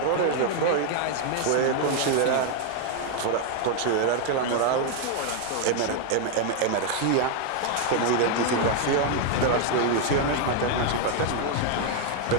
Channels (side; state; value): both; different; correlation 0.00